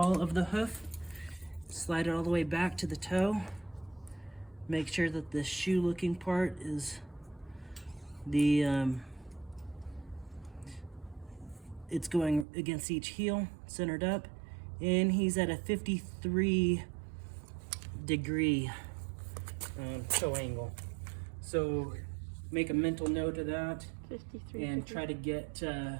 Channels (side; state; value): left; drops out; at 12.5 s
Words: of the hoof, slide it all the way back to the toe. Make sure that the shoe looking part is it's going against each heel, centered up, and he's at a 53-degree toe angle. So make a mental note of that 53. and try to get